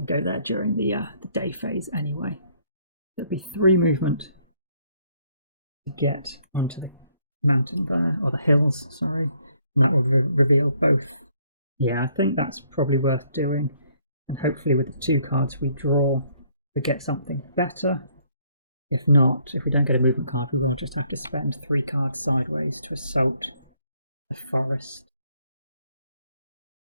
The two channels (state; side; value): inverted; both; correlation -0.67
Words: go there during the day phase anyway. There'll be 3 movement to get onto the mountain there, or the hills, sorry, and that will reveal both. Yeah, I think that's probably worth doing, and hopefully with the 2 cards we draw, we get something better. If not, if we don't get a movement card, we will just have to spend 3 cards sideways to assault the forest.